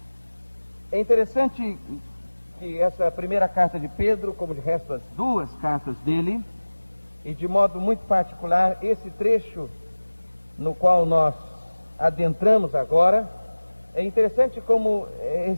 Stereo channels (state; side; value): inverted; both; correlation -1.00